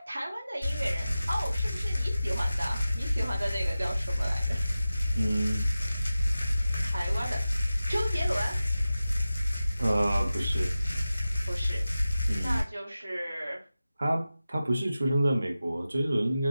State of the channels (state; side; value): inverted; both; correlation -0.95